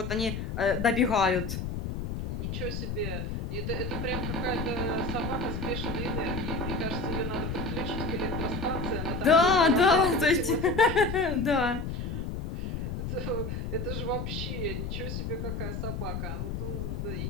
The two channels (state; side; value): noise; left; rumble, 4 dB below the sound